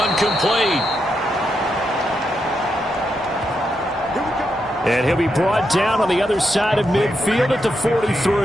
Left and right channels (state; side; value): normal; both; correlation 0.83